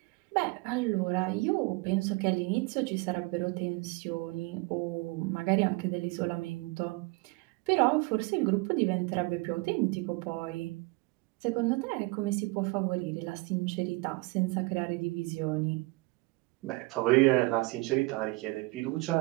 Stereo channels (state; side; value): quieter; left; 24.2 dB